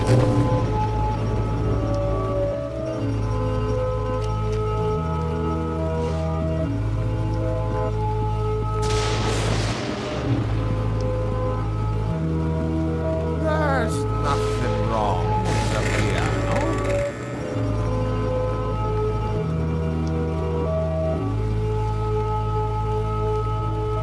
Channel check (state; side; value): identical; both; correlation 1.00